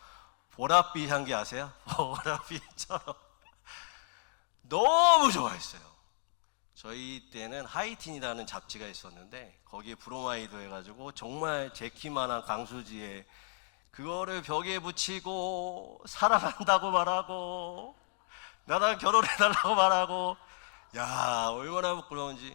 보랏빛 향기 아세요? 보랏빛처럼 너무 좋아했어요. 저희 때는 하이틴이라는 잡지가 있었는데 거기에 브로마이드 해가지고 정말 제 키만한 강수지에 그거를 벽에 붙이고 사랑한다고 말하고 나랑 결혼해달라고 말하고, 야 얼마나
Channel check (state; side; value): silent; right; 55 dB below the other